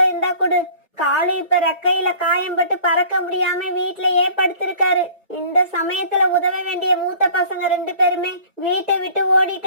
இருந்தா கொடு. காலு இப்ப ரெக்கையில காயம்பட்டு பறக்க முடியாம வீட்லயே படுத்திருக்காரு. இந்த சமயத்துல உதவ வேண்டிய மூத்த பசங்க 2 பேருமே வீட்டை விட்டு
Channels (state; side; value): inverted; both; correlation -0.48